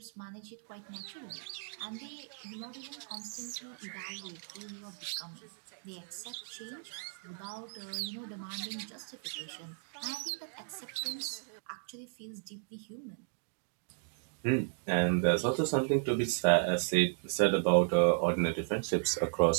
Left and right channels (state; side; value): silent; left; digital silence